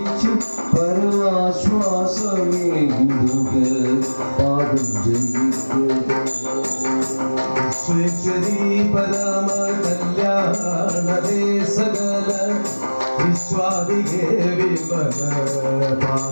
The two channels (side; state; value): both; inverted; correlation -1.00